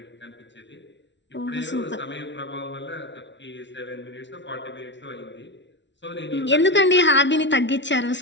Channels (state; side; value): late; right; 0.52 ms